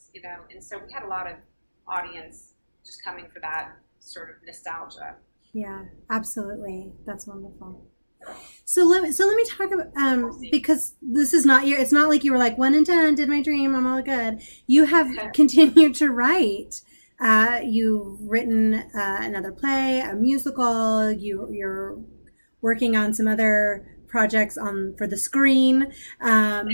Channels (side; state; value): both; inverted; correlation -1.00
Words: And so we had a lot of audience just coming for that sort of nostalgia. Yeah, absolutely. That's wonderful. So let me talk about because this is not it's not like you were like 1 and 10 did my dream, I'm all good. You have continued to write. You've written another play, a musical. You're working on some other projects for the screen.